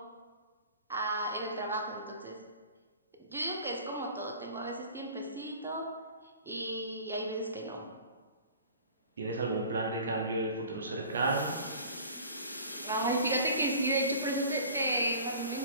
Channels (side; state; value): both; inverted; correlation -0.44